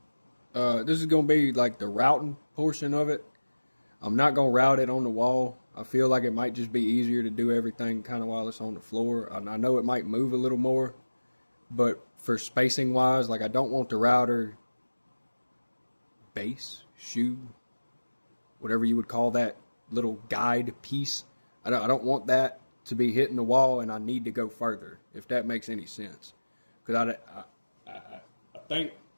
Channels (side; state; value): both; inverted; correlation -1.00